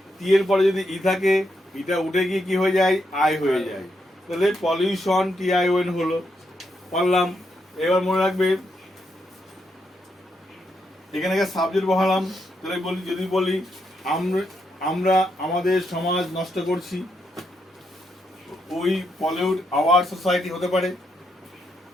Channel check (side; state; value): both; normal; correlation 0.80